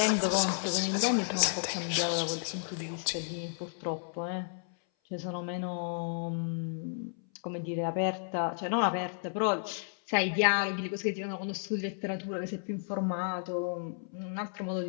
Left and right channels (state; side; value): silent; right; 56 dB below the other